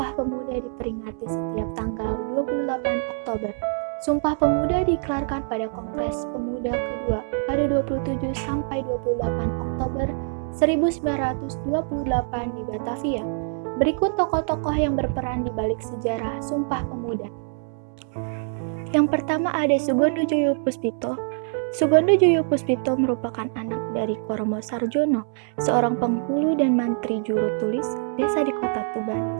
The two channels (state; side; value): silent; left; 58 dB below the other